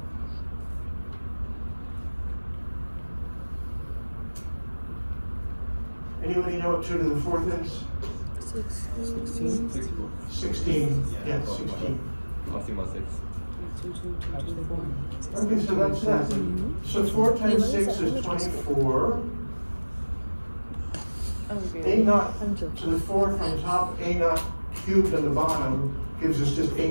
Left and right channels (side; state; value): both; inverted; correlation -1.00